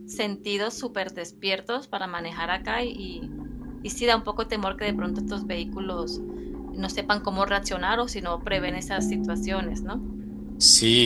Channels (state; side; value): identical; both; correlation 1.00